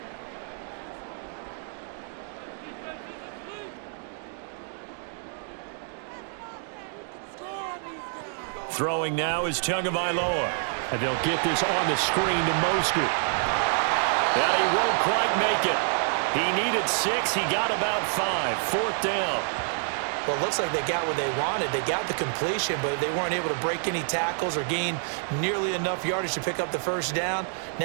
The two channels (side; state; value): left; silent; 60 dB below the other